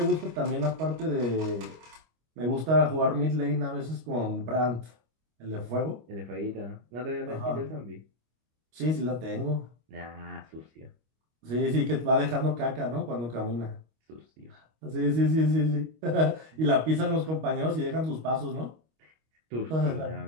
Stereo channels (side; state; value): left; late; 25 ms